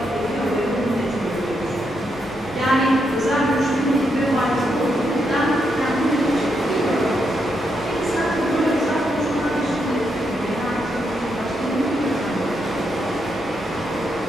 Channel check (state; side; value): normal; both; correlation 0.80